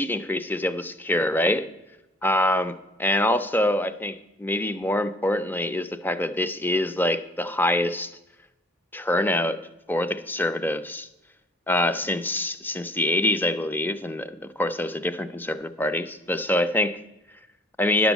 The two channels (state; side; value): normal; both; correlation 0.53